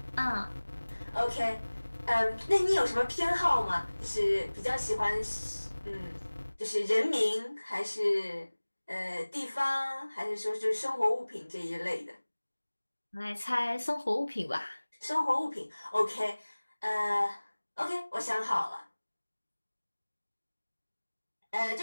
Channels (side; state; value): both; inverted; correlation -1.00